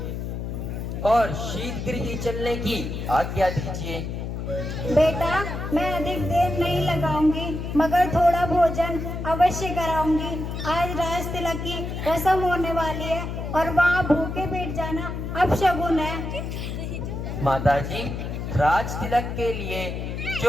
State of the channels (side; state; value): left; noise; hum, 5 dB below the sound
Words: और शीतगृह चलने की आज्ञा दीजिए। बेटा, मैं अधिक देर नहीं लगाऊंगी, मगर थोड़ा भोजन अवश्य कराऊंगी। आज राज तिलक की रस्म होने वाली है और वहाँ भूखे पेट जाना अपशगुन है। माताजी, राज तिलक के लिए